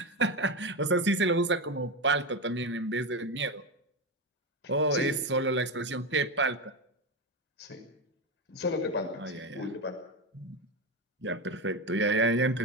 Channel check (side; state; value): both; normal; correlation 0.15